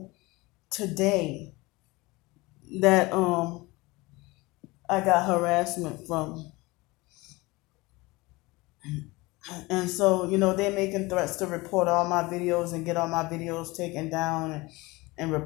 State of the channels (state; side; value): quieter; right; 22.6 dB